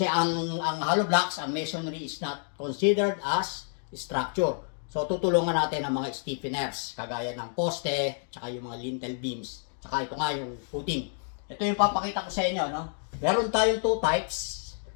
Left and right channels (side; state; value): right; silent; 59 dB below the other